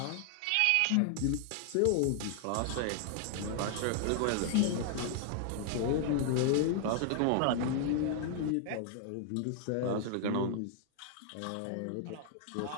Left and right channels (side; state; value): both; different; correlation 0.00